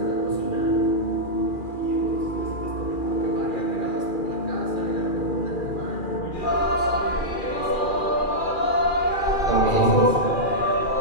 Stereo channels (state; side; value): late; right; 2.4 ms